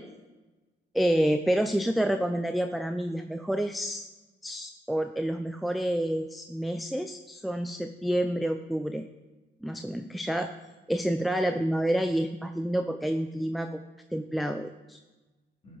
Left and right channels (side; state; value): both; normal; correlation 0.94